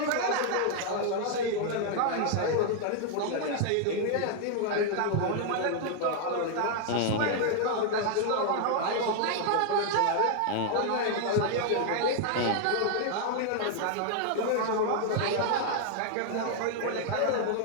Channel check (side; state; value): both; different; correlation 0.00